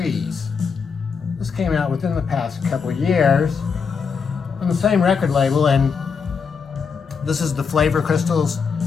This came out within the past couple of years on the same record label, and this is the Flavor Crystals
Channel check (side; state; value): right; quieter; 5.8 dB